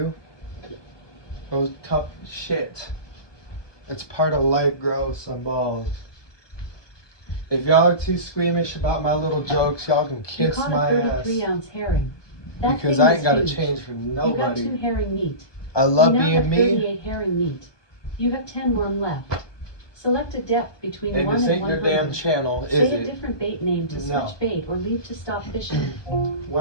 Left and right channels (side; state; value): right; late; 1.2 ms